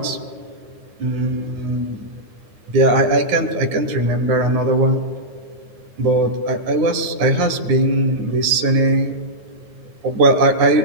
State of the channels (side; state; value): left; late; 9.6 ms